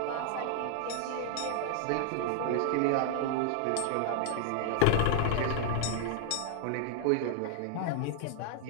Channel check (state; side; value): different; both; correlation 0.00